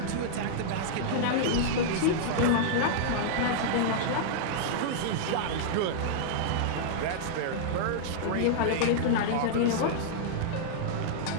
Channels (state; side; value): different; both; correlation -0.02